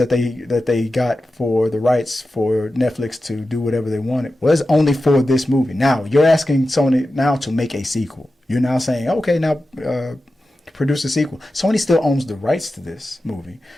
they got for the rights for Netflix to do whatever they wanted was only for this movie. Now you're asking Sony now to make a sequel. You're now saying, okay, now produce a sequel. Sony still owns the rights to this movie.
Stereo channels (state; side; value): normal; both; correlation 0.93